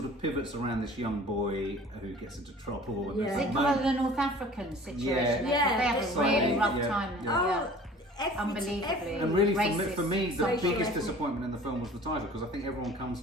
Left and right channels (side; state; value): both; normal; correlation 0.46